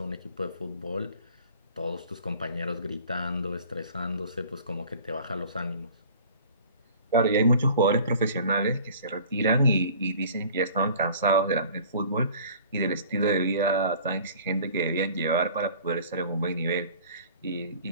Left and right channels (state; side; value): inverted; both; correlation -0.47